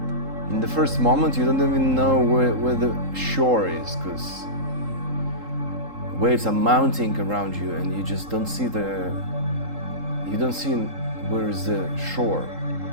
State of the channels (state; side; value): late; left; 3.8 ms